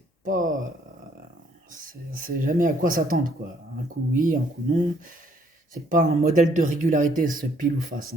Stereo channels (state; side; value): normal; both; correlation 0.66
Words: pas... c'est jamais à quoi s'attendre, quoi. Un coup oui, un coup non. C'est pas un modèle de régularité, ce Pile ou Face,